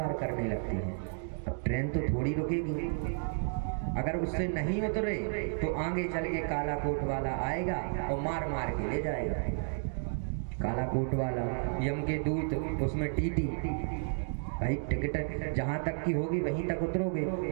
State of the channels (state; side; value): silent; left; digital silence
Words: करने लगते हैं। अब ट्रेन तो थोड़ी रुकेगी, अगर उससे नहीं उतरे तो आगे चल के काला कोट वाला आएगा और मार मार के ले जाएगा। काला कोट वाला, यम के दूत, उसमें टीटी, भाई टिकट जहाँ तक की होगी वहीं तक उतरोगे,